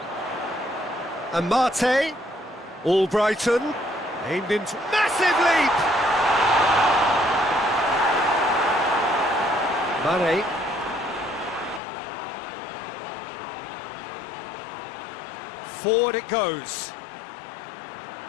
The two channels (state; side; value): drops out; right; at 11.8 s